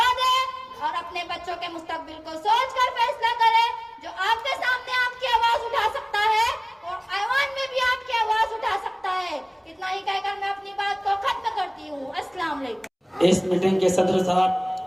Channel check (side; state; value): both; identical; correlation 1.00